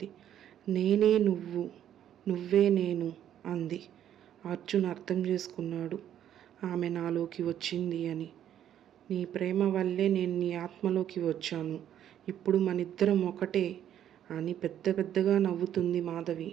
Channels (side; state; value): left; quieter; 10.5 dB